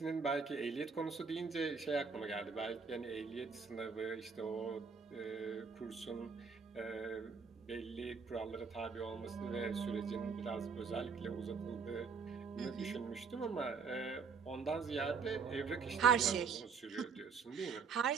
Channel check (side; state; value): left; quieter; 5.5 dB